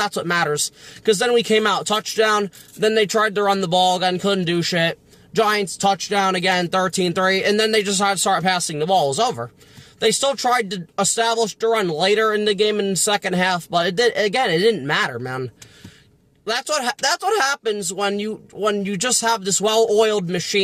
what matters. Because then we came out, touchdown, then they tried to run the ball again, couldn't do shit. Giants, touchdown again, 13-3, and then they just had to start passing the ball. It was over. They still tried to establish the run later in the game in the second half, but it didn't matter, man. That's what happens when you just have this well-oiled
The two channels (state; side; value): identical; both; correlation 1.00